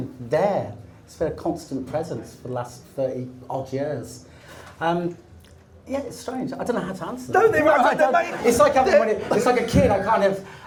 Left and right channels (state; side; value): identical; both; correlation 1.00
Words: there. It's been a constant presence for the last 30 odd years. Yeah, it's strange. I don't know how to answer that. Don't they? Right, It's like it's like a kid. I kind of,